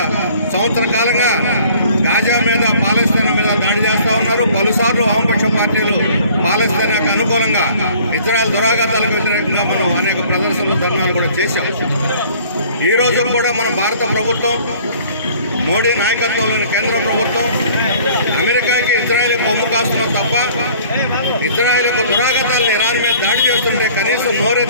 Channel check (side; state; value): both; inverted; correlation -0.53